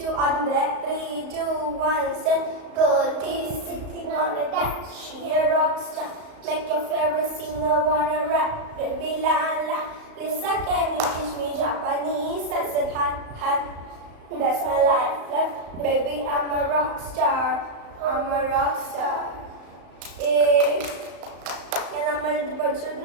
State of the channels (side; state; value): left; late; 34 ms